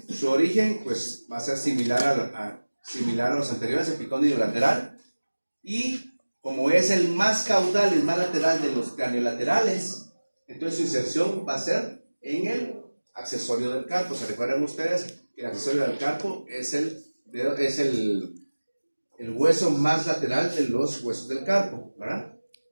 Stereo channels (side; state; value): both; inverted; correlation -1.00